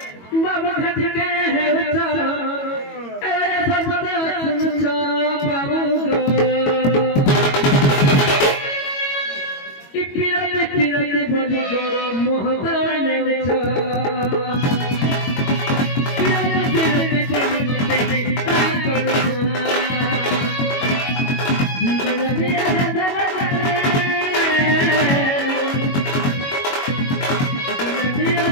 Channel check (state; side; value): late; right; 22 ms